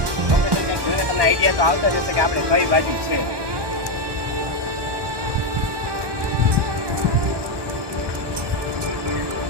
કંઈક જોઈને તમને આઈડિયા તો આવતા જશે કે આપણે કઈ બાજુ છે.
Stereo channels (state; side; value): late; left; 1.2 ms